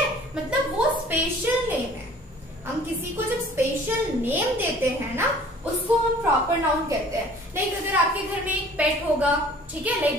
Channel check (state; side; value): normal; both; correlation 0.50